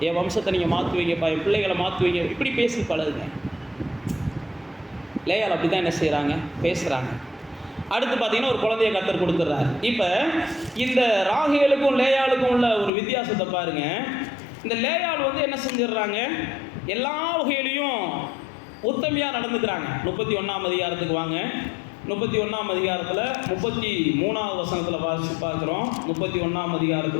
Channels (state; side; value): drops out; right; at 12.9 s